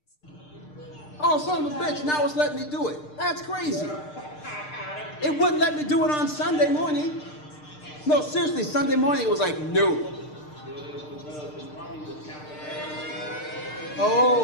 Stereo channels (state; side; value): late; right; 6.6 ms